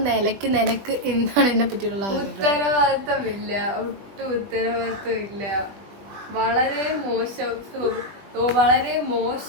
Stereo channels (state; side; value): late; left; 20 ms